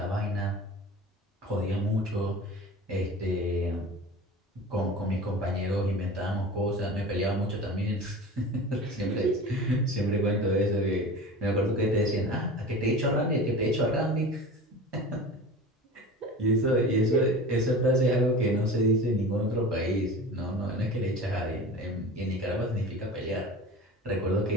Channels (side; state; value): both; normal; correlation 0.34